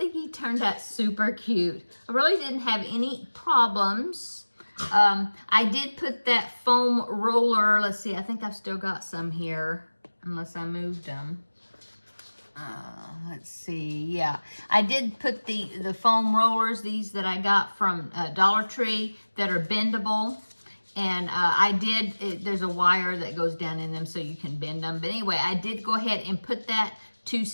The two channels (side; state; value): both; inverted; correlation -1.00